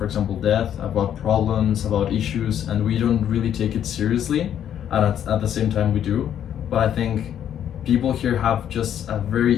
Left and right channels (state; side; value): quieter; right; 9.9 dB